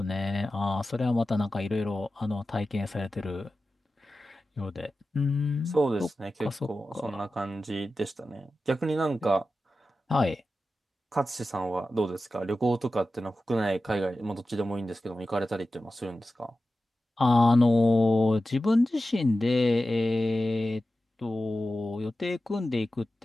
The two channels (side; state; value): both; normal; correlation 0.94